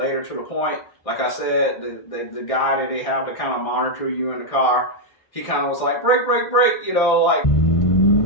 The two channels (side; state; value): right; late; 1.6 ms